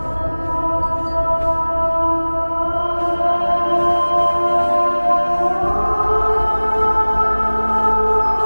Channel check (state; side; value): inverted; both; correlation -1.00